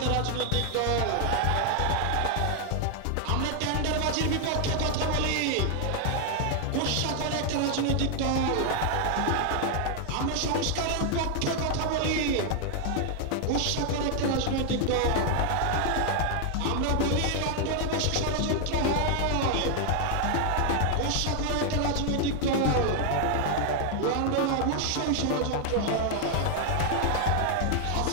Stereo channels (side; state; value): both; different; correlation 0.00